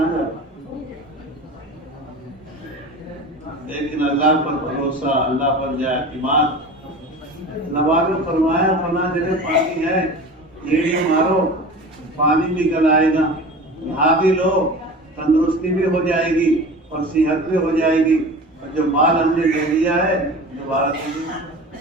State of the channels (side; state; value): both; normal; correlation 0.35